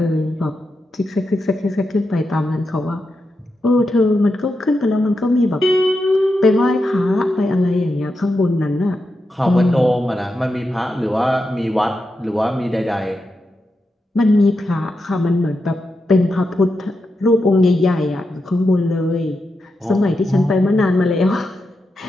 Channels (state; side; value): normal; both; correlation 0.87